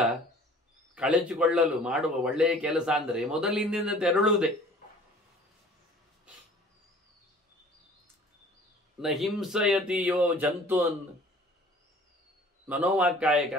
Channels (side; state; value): both; normal; correlation 0.50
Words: ಕಳಚಿಕೊಳ್ಳಲು ಮಾಡುವ ಒಳ್ಳೆಯ ಕೆಲಸ ಅಂದರೆ ಮೊದಲಿನಿಂದ ತೆರಳುವುದೇ. ನ ಹಿಂಸಯತಿಯೋ ಜಂತೂನ್ ಮನೋವಾಕ್ಕಾಯ